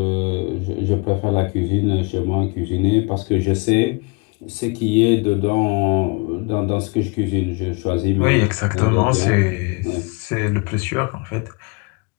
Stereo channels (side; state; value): right; quieter; 30.3 dB